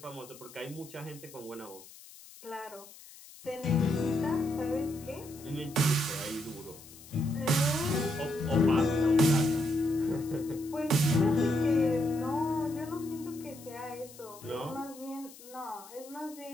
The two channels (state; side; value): noise; left; hiss, 19 dB below the sound